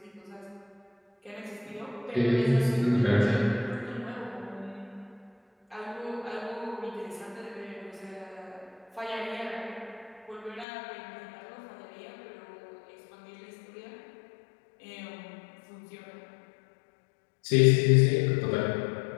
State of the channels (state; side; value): drops out; right; at 10.7 s